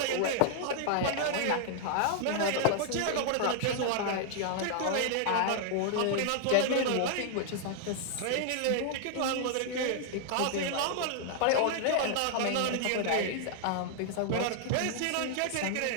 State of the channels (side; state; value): both; different; correlation 0.00